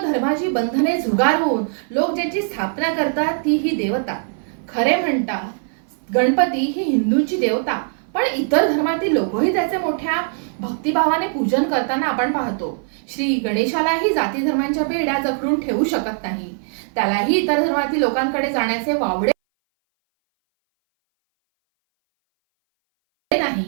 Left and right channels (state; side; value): silent; left; 60 dB below the other